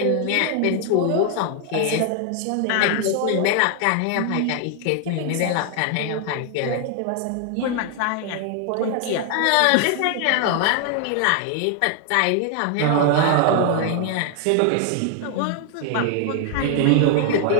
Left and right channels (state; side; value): different; both; correlation 0.00